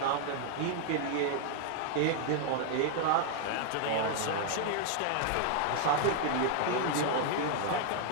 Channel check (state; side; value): different; both; correlation 0.00